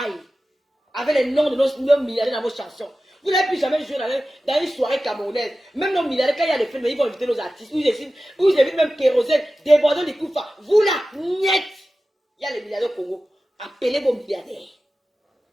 Avec les noms de nos milliardaires dans vos chansons. Vous n'avez plus jamais joué dans une soirée camerounaise. Même nos milliardaires, quand il y a des films, ils vont inviter nos artistes. Vous invitent même Kérosène, débordant des coups. Vous là, niet. Il y a les milliardaires au Congo. Appelez vos milliardaires.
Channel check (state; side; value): normal; both; correlation 0.95